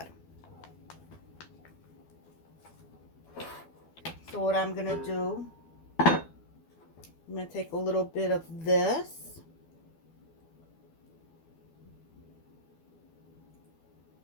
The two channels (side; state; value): right; late; 12 ms